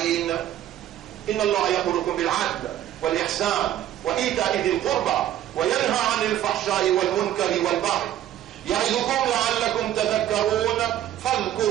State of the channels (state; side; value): quieter; left; 12.1 dB